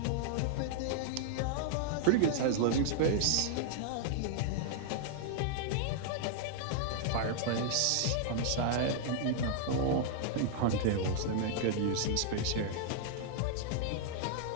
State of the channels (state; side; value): different; both; correlation -0.01